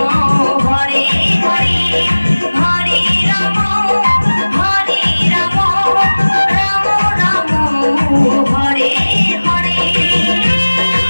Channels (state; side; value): inverted; both; correlation -1.00